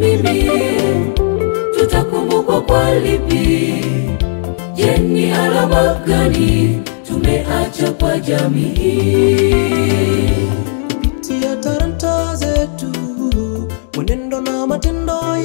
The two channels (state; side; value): silent; right; digital silence